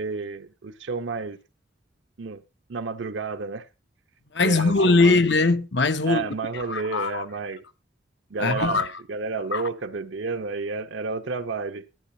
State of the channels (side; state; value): both; normal; correlation 0.35